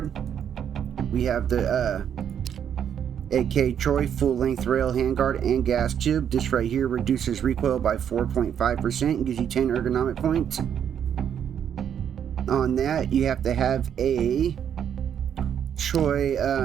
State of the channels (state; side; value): quieter; left; 8.7 dB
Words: We have the AK Troy full length rail handguard and gas tube. This right here reduces recoil by 4.5% and gives you 10 ergonomic points. On that, you have to have a Troy